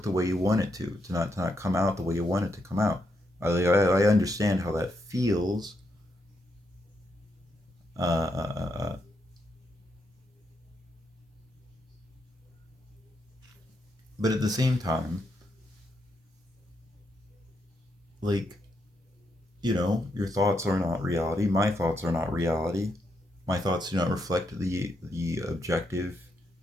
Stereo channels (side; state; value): both; normal; correlation 0.80